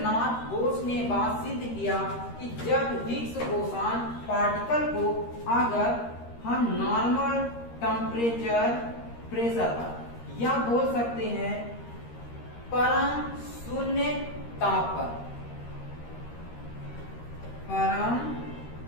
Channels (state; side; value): late; right; 13 ms